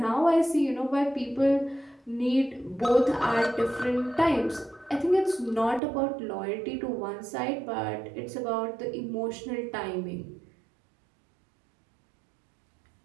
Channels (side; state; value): left; drops out; at 5.8 s